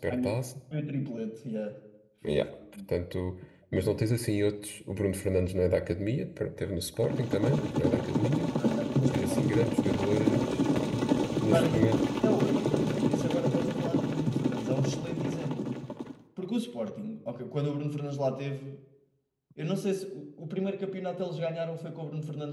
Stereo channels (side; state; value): both; identical; correlation 1.00